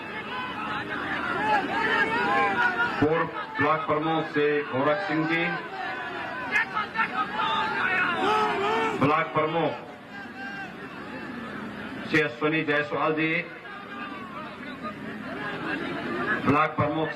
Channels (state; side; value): identical; both; correlation 1.00